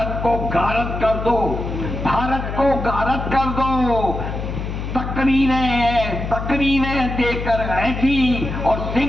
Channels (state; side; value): noise; left; hum, 5 dB below the sound